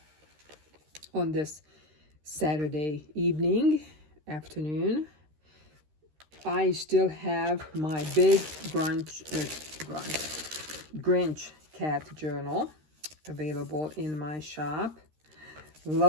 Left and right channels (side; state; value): left; late; 13 ms